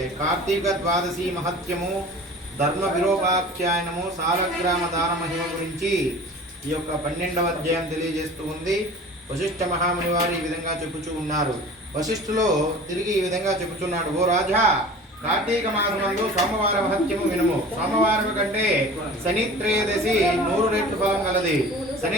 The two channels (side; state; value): both; normal; correlation 0.41